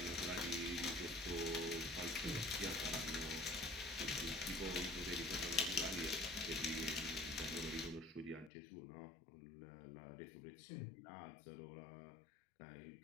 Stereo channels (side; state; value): right; drops out; at 8.5 s